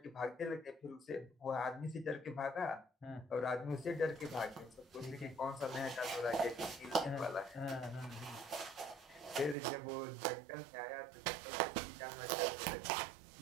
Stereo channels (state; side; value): drops out; left; at 9.6 s